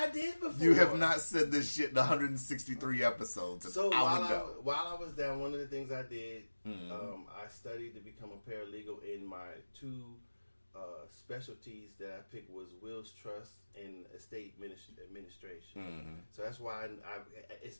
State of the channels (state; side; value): inverted; both; correlation -1.00